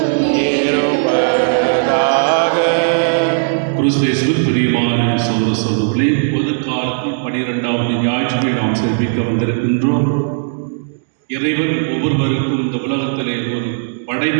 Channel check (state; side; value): silent; left; digital silence